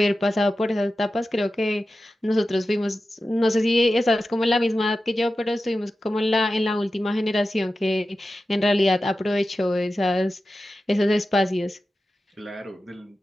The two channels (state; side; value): normal; both; correlation 0.93